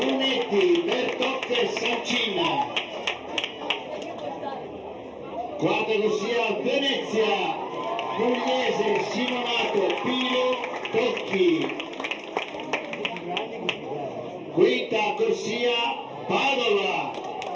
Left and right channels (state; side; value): identical; both; correlation 1.00